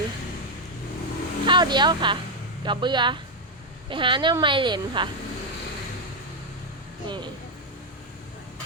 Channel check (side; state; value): both; normal; correlation 0.03